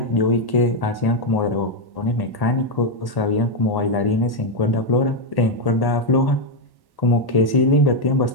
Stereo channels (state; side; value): late; right; 1.1 ms